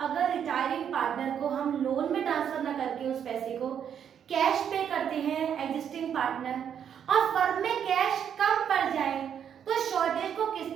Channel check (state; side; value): quieter; left; 8.5 dB